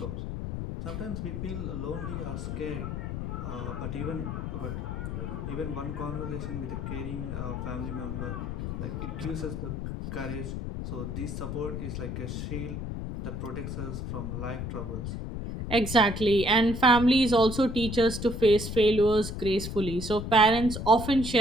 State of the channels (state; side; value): noise; left; rumble, 5 dB below the sound